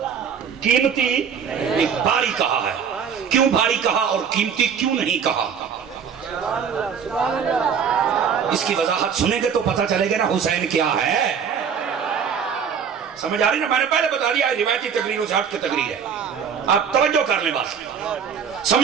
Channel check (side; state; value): left; quieter; 7.1 dB